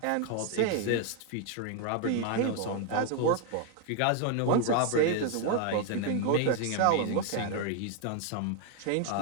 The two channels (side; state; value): both; different; correlation 0.01